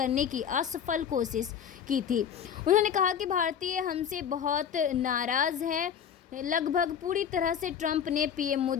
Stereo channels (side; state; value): right; quieter; 8.2 dB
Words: की असफल कोशिश की थी। उन्होंने कहा कि भारतीय हमसे बहुत नाराज़ हैं। लगभग पूरी तरह से ट्रंप ने पीएम